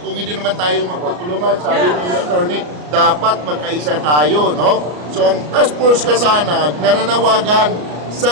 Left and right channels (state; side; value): late; left; 34 ms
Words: hindi naman tayo magtutulungan? Sabi ni attorney, dapat magkaisa tayo, no? So ang Task Force Kasanag nananawagan sa